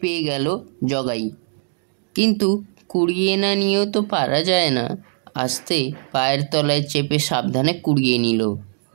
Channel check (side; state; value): left; silent; 65 dB below the other